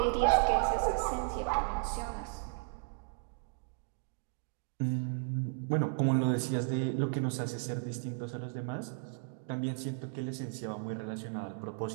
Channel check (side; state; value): left; silent; digital silence